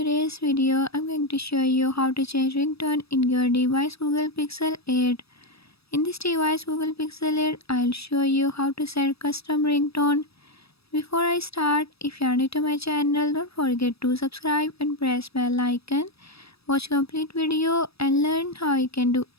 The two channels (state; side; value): late; right; 0.77 ms